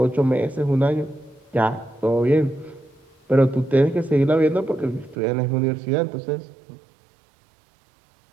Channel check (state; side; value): drops out; left; at 5.2 s